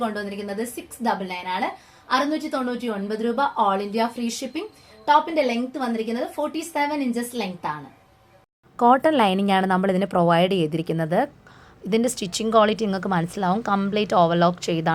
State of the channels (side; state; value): both; identical; correlation 1.00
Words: കൊണ്ടുവന്നിരിക്കുന്നത് 699 ആണ്. 699 രൂപ. All India free shipping. ടോപ്പിന്റെ ലെങ്ത് വന്നിരിക്കുന്നത് 47 ഇഞ്ചസ് ലെങ്ത് ആണ്. കോട്ടൺ ലൈനിങ് ആണ് നമ്മൾ ഇതിന് പ്രൊവൈഡ് ചെയ്തിരിക്കുന്നത്. ഇതിന്റെ സ്റ്റിച്ചിങ് ക്വാളിറ്റി നിങ്ങൾക്ക് മനസ്സിലാവും. കംപ്ലീറ്റ് ഓവർലോക്ക്